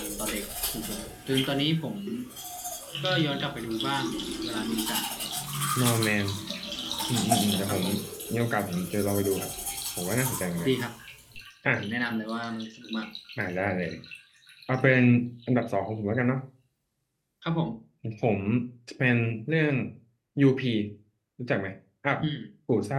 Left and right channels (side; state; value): both; identical; correlation 1.00